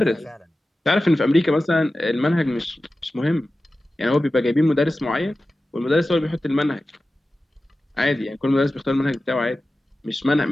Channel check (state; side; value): normal; both; correlation 0.94